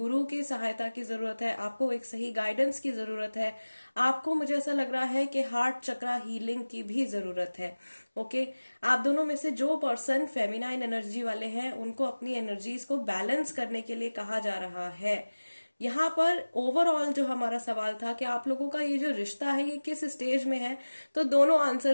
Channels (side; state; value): both; inverted; correlation -1.00